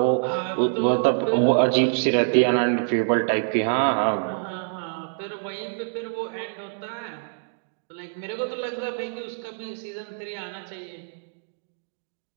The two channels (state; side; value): silent; left; digital silence